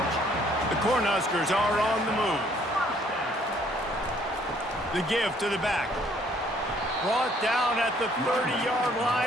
The Cornhuskers are on the move. The give to the back. Brought down at the 30-yard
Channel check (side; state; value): both; normal; correlation 0.63